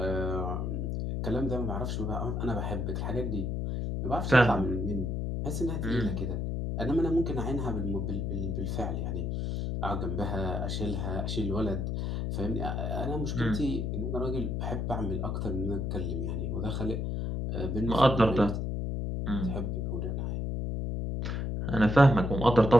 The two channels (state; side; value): noise; left; hum, 1 dB below the sound